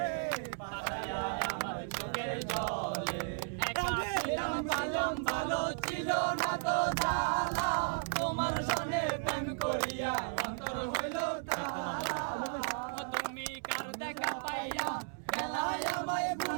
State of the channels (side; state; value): left; silent; digital silence